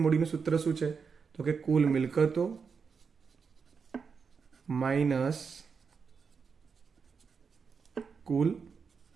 મૂડીનું સૂત્ર શું છે? તો કે કુલ મિલકતો માઇનસ કુલ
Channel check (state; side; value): quieter; left; 5.7 dB